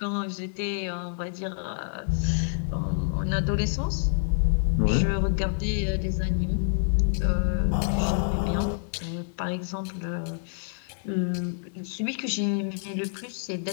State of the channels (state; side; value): silent; right; 60 dB below the other